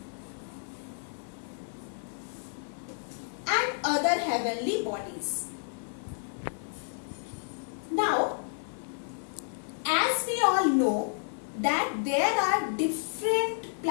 and other heavenly bodies. Now, as we all know that there are different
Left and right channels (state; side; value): silent; right; digital silence